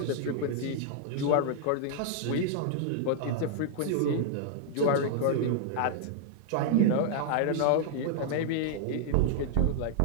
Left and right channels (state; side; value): different; both; correlation -0.01